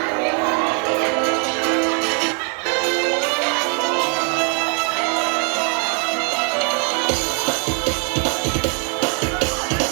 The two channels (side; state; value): left; quieter; 39.1 dB